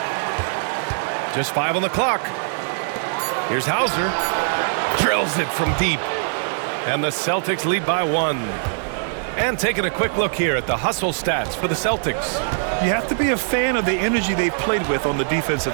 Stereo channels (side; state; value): left; silent; 64 dB below the other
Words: Just 5 on the clock. Here's Hauser. Drills it from deep. And the Celtics lead by 1. And taking a quick look here at the hustle stats for the Celtics. You have to be a fan of the energy they've played with on the